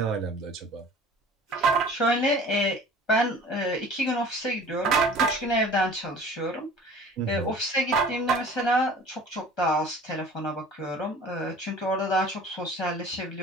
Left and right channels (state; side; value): normal; both; correlation 0.45